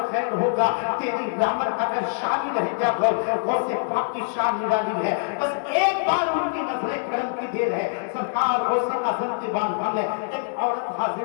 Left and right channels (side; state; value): right; silent; digital silence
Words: ہوگا، تیری رحمت کا پھر شامل ہے یا غوث. غوث پاک کی شان نرالی ہے. بس ایک بار ان کی نظر کرم کی دیر ہے. سرکار غوث اعظم کی بارگاہ میں ایک عورت